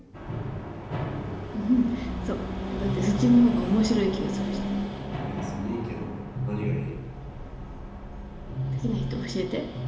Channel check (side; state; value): both; identical; correlation 1.00